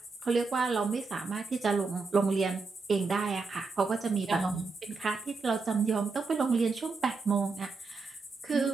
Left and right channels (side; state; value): left; quieter; 4.3 dB